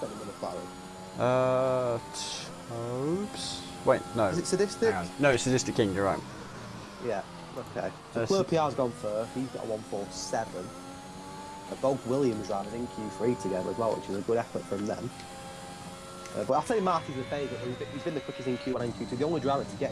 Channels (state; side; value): identical; both; correlation 1.00